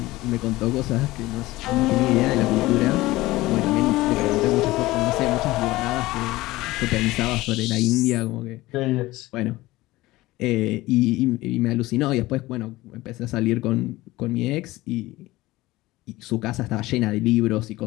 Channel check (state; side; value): quieter; right; 18.7 dB